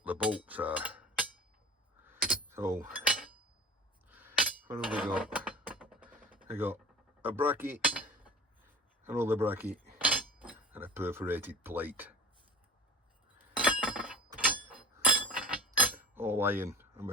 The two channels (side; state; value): both; normal; correlation 0.37